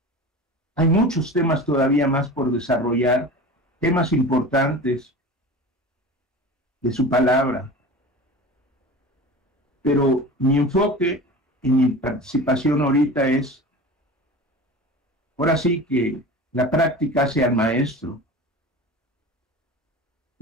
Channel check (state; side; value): normal; both; correlation 0.34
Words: Hay muchos temas todavía más por desarrollar, temas importantes de su palabra, pero mi enfoque y mi participación ahorita es, ahora sí que la práctica hace al maestro.